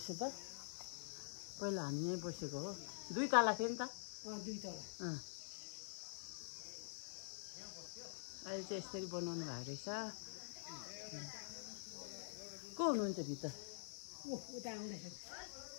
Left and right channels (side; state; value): right; silent; digital silence